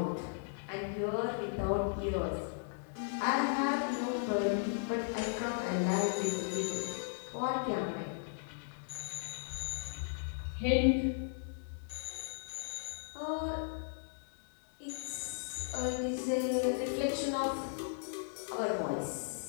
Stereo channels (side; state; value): right; silent; digital silence